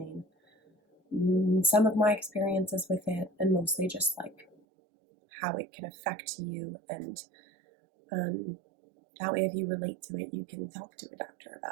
some of my experiences with it, and mostly just like how it can affect you, and that way if you relate to it, you can talk to a doctor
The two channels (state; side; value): drops out; left; at 4.5 s